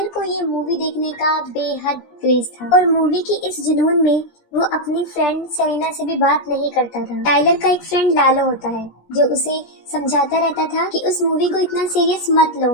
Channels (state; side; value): late; right; 17 ms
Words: को ये मूवी देखने का बेहद क्रेज था और मूवी की इस जुनून में वो अपनी फ्रेंड सेलिना से भी बात नहीं करता था। टाइलर का एक फ्रेंड लालो होता है जो उसे समझाता रहता था कि उस मूवी को इतना सीरियस मत लो,